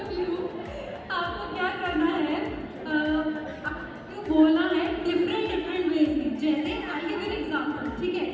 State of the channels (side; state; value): both; identical; correlation 1.00